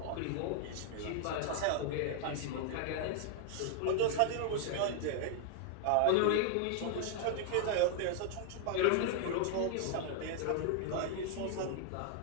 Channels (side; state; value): both; different; correlation 0.00